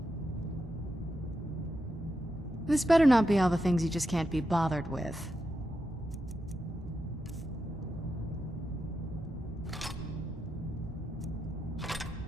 This better not be all the things you just can't be bothered with.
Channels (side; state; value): both; normal; correlation 0.86